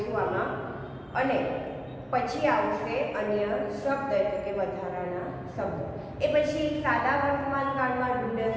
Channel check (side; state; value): both; identical; correlation 1.00